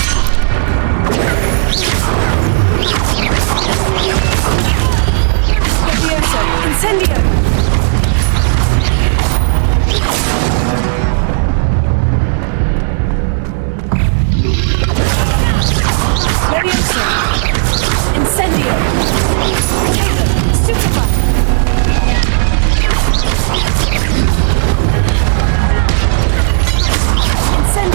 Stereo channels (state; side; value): silent; left; digital silence